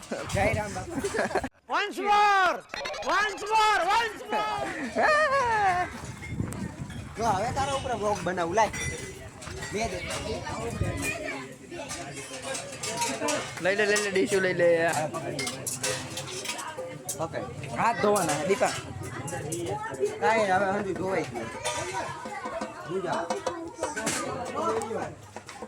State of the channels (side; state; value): both; identical; correlation 1.00